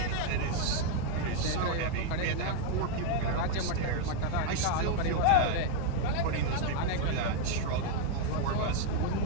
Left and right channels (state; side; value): different; both; correlation 0.00